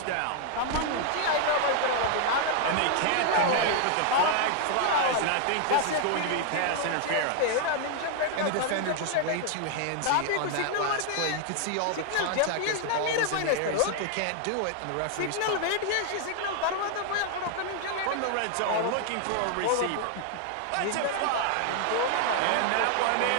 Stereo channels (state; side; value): different; both; correlation 0.00